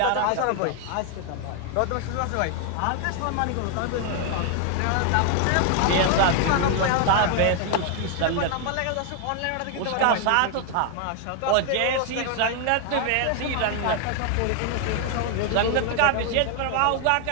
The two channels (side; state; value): both; different; correlation 0.00